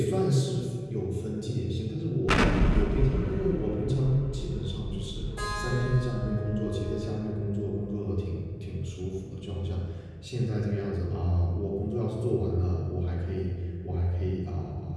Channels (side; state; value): both; identical; correlation 1.00